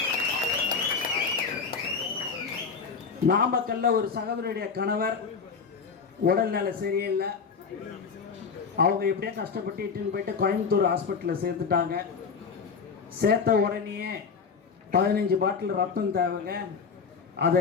நாமக்கல்ல ஒரு சகோதரியுடைய கணவர் உடல்நிலை சரியில்லை. அவங்க எப்படியே கஷ்டப்பட்டு இட்டுன்னு போயிட்டு கோயம்புத்தூர் ஹாஸ்பிட்டலில் சேர்த்துட்டாங்க. சேர்த்த உடனேயே 15 பாட்டில் ரத்தம் தேவைங்க.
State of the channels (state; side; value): quieter; right; 5.6 dB